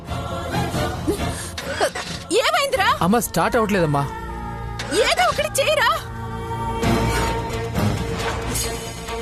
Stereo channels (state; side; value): identical; both; correlation 1.00